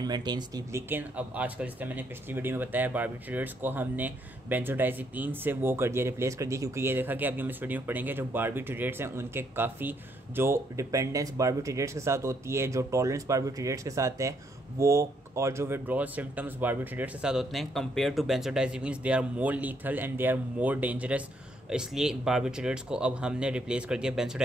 maintain sleep. लेकिन अब आजकल जिस तरह मैंने पिछली वीडियो में बताया बारबिट्यूरेट्स को हमने बेंजोडाइज़ेपिन से वो कर दिया, रिप्लेस कर दिया, क्योंकि ये देखा कि अभी हम इस वीडियो में पढ़ेंगे जो बारबिट्यूरेट्स हैं उनके काफ़ी जो डिपेंडेंस बारबिट्यूरेट्स के साथ होती है, जो टॉलरेंस बारबिट्यूरेट्स के साथ है वो, और जो विड्रॉल सिम्टम्स बारबिट्यूरेट्स के साथ होते हैं compared to benzodiazepines, they are more lethal and they are more dangerous. इसलिए बारबिट्यूरेट्स को अब हमने रिप्लेस कर दिया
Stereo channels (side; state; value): both; normal; correlation 0.73